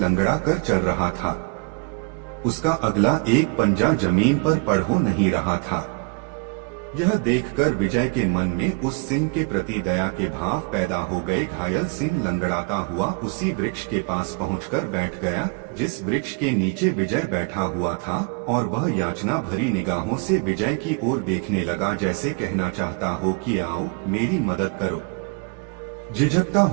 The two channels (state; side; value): quieter; left; 33.1 dB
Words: कर चल रहा था। उसका अगला एक पंजा जमीन पर पड़ हो नहीं रहा था। यह देखकर विजय के मन में उस सिंह के प्रति दया के भाव पैदा हो गए। घायल सिंह लंगड़ाता हुआ उसी वृक्ष के पास पहुंचकर बैठ गया जिस वृक्ष के नीचे विजय बैठा हुआ था, और वह याचना भरी निगाहों से विजय की ओर देखने लगा, जैसे कहना चाहता हो कि आओ मेरी मदद करो। झिझकता